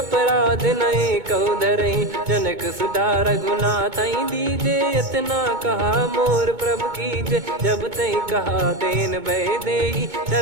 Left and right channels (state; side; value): late; left; 2.2 ms